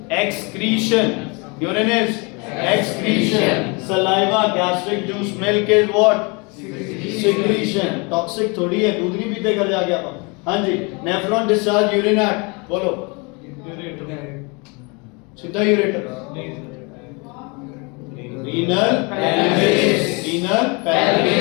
excretion, urine is excretion. Saliva, gastric juice, milk is what? Secretion. Toxic थोड़ी है, दूध नहीं पीते घर जाके आप। हाँ जी, नेफ्रॉन डिस्चार्ज यूरिन एट, बोलो सीधा ureter, renal pelvis, renal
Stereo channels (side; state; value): right; quieter; 30.0 dB